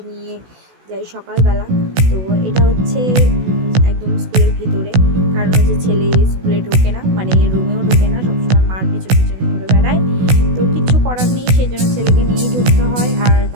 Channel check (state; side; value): late; left; 16 ms